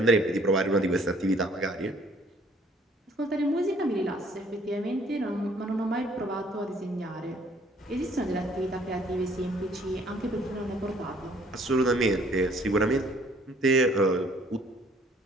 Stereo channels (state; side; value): normal; both; correlation 0.59